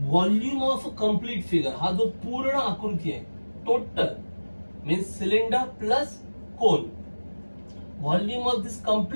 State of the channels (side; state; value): both; inverted; correlation -1.00